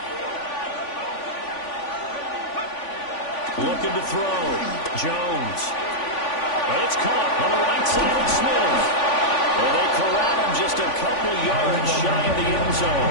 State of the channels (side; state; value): right; late; 3.5 ms